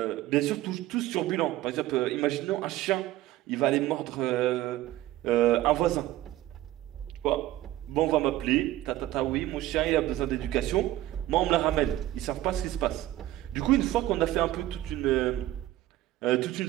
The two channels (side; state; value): left; quieter; 15.1 dB